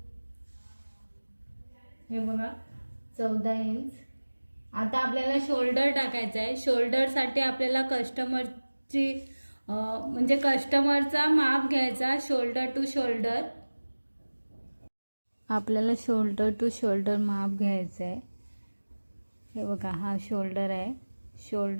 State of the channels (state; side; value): inverted; both; correlation -1.00